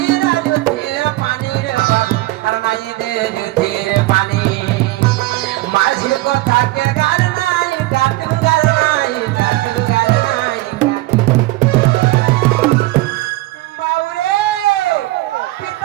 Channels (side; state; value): left; quieter; 18.9 dB